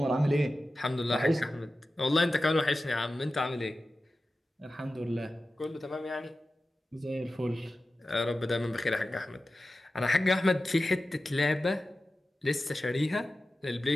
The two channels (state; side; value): normal; both; correlation 0.94